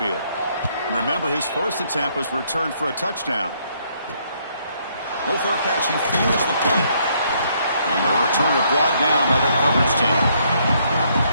Remember, his first attempt was returned for a touchdown. No fair catch. He feels the punt. And the returner brought down by the coverage team.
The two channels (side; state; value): both; inverted; correlation -0.70